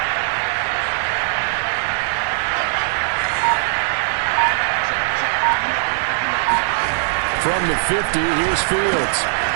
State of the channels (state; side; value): silent; left; 56 dB below the other